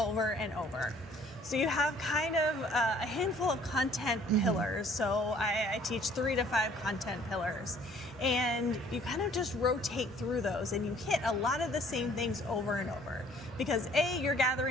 and over. So you have kind of a handful of content pillars. So I teach 3 to 5 content pillars. And you kind of just rotate through those and you hit a lot of the same things over and over. Because A, you're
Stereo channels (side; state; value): both; normal; correlation 0.57